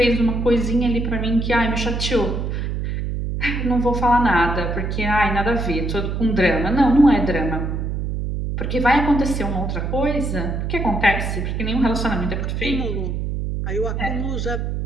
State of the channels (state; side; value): noise; right; hum, 2 dB below the sound